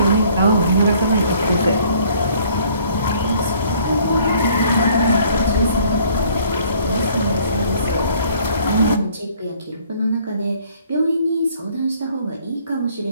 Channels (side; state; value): both; inverted; correlation -0.59